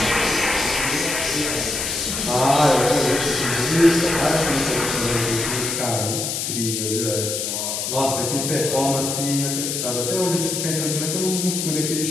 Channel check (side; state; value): left; noise; hiss, 2 dB below the sound